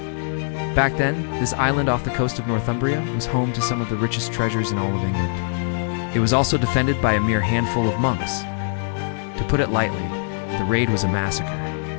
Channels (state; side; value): silent; right; digital silence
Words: Back then, this island off the coast of Northumbria was home to some of the richest treasures in all of England. It was also defended by a mere handful of monks. To put it lightly, the raid was a massacre.